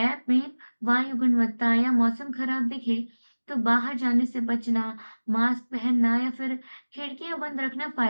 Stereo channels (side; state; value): both; inverted; correlation -1.00